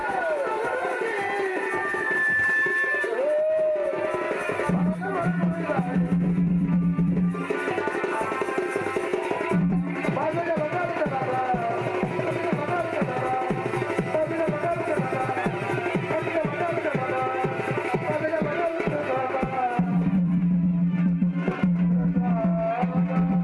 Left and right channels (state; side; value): identical; both; correlation 1.00